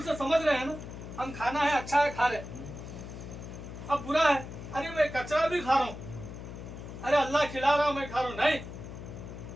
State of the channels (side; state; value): left; noise; hum, 11 dB below the sound